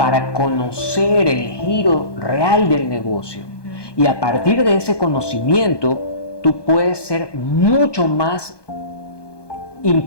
conocer el giro real del negocio. Y a partir de ese conocimiento, tú puedes ser mucho más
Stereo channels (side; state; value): right; late; 1.2 ms